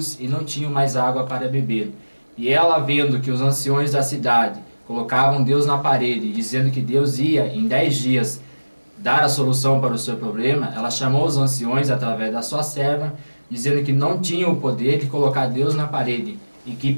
e não tinha mais água para beber. E ela, vendo que os anciões da cidade colocavam Deus na parede, dizendo que Deus ia, em 10 dias, dar a solução para o seu problema, ela chamou os anciões através da sua serva, dizendo que não tinham o poder de colocar Deus na parede, e que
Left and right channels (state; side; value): inverted; both; correlation -1.00